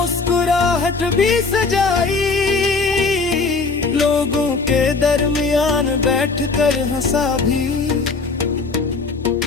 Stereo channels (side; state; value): right; quieter; 4.2 dB